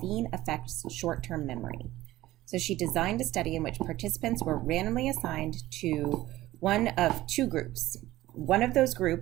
affects short-term memory. So she designed a study in which participants were randomly assigned to one of two groups. One of those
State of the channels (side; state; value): left; quieter; 16.2 dB